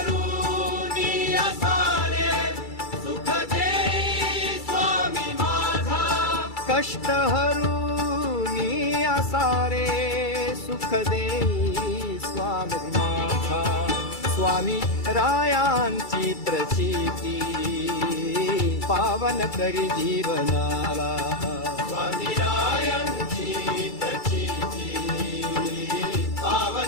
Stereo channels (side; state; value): right; late; 2.3 ms